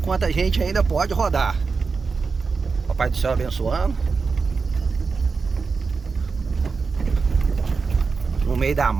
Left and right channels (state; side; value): quieter; left; 4.8 dB